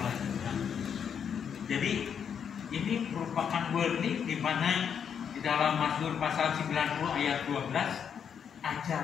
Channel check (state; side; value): quieter; right; 7.6 dB